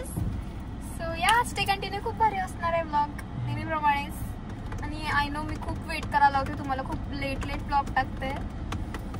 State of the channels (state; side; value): identical; both; correlation 1.00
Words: सो या स्टे कंटिन्यू. खूप भारी असणार आहे ब्लॉग नेहमीप्रमाणेच. आणि आय नो मी खूप वेट करायला होते तुम्हाला. खूप लेट ब्लॉग टाकते.